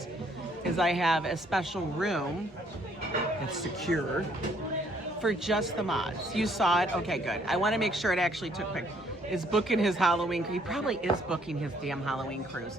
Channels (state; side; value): normal; both; correlation 0.66